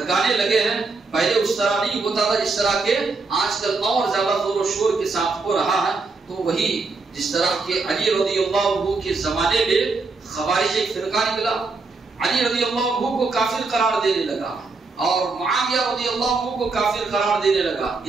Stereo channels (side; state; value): left; quieter; 4.0 dB